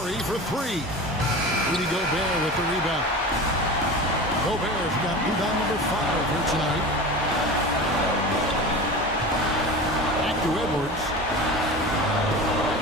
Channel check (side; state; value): both; normal; correlation 0.32